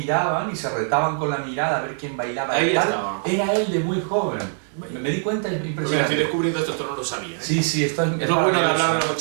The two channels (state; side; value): silent; left; digital silence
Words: y se retaban con la mirada a ver quién bailaba. Ahí y tal. estaba. Era él de muy joven. Me di cuenta, es Mira, impresionante. estoy descubriendo esto no lo sabía. Sí, esto es Es lo bueno de maravilloso. hablar de los